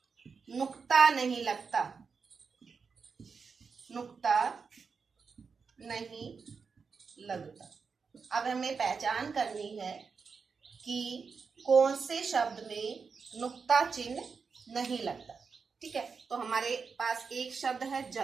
नुक्ता नहीं लगता, नुक्ता नहीं लगता। अब हमें पहचान करनी है कि कौन से शब्द में नुक्ता चिन्ह नहीं लगता, ठीक है। तो हमारे पास एक शब्द है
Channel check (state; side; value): quieter; left; 5.4 dB